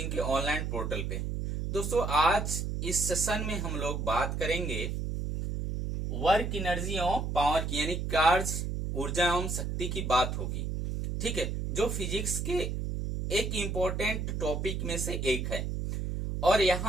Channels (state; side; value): noise; right; hum, 2 dB below the sound